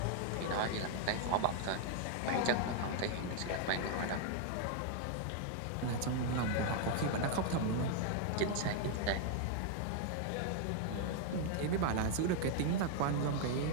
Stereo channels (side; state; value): both; different; correlation 0.00